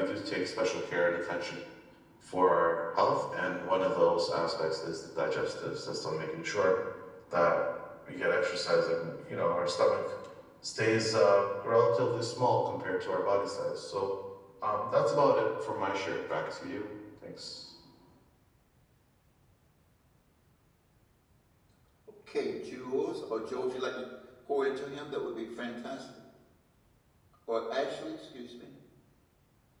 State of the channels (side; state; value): both; identical; correlation 1.00